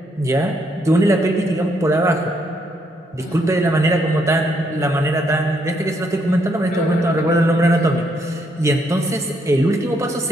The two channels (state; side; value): normal; both; correlation 0.74